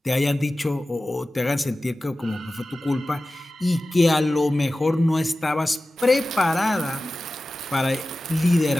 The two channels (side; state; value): both; normal; correlation 0.95